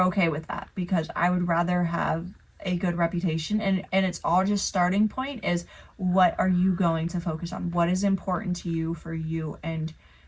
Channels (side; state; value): both; identical; correlation 1.00